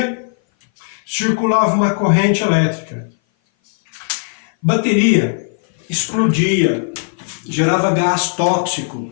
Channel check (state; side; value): silent; right; 58 dB below the other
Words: circulava uma corrente elétrica. Bateria explodia, gerava gás